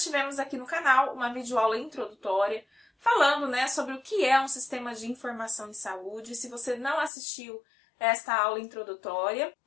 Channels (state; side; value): drops out; right; at 7.1 s